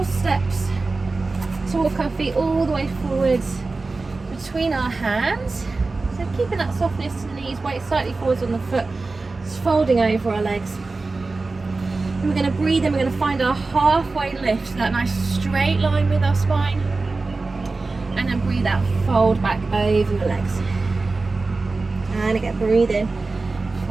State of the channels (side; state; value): left; quieter; 3.7 dB